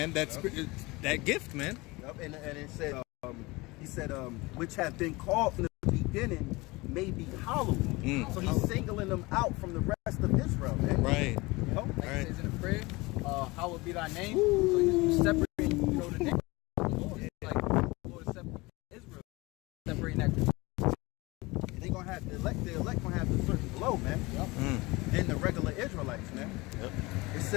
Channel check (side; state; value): right; quieter; 23.1 dB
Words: That gift, man. Yep. And it said, he said, which have been called from the beginning may be hallowed. So he's singling them out from the rest of Israel, man. Right. You know? Like Right. it says in the prayer, hallowed be thy name. So you separate, you know, the name of the Lord. Like the Lord is separating Israel, separating that. They're gonna the elect gonna have a certain glow, man. Than the regular Israelites, man. It